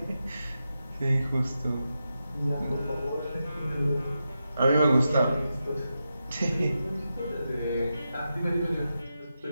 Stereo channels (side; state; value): both; inverted; correlation -0.89